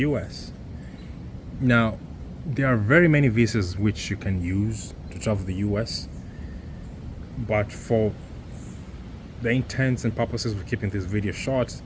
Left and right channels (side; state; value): both; identical; correlation 1.00